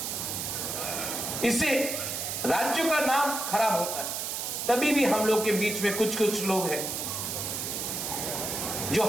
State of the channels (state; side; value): noise; right; hiss, 3 dB below the sound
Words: इससे राज्य का नाम खराब होता है। तभी भी हम लोग के बीच में कुछ लोग हैं जो